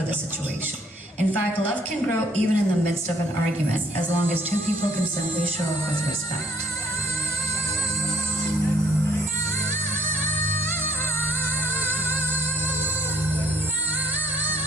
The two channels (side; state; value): both; normal; correlation 0.62